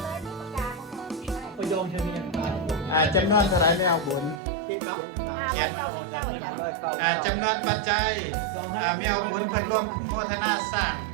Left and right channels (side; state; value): left; drops out; at 4.4 s